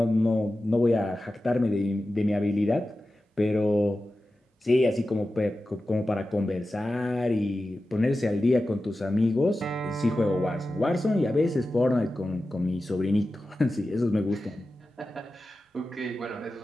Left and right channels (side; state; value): both; normal; correlation 0.93